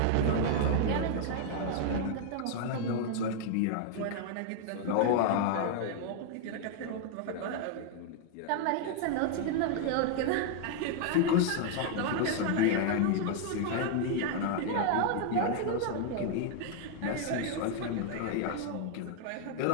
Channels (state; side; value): different; both; correlation 0.00